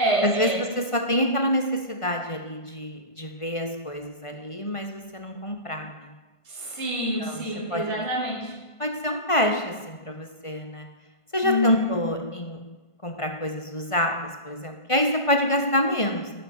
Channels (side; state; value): right; late; 1.5 ms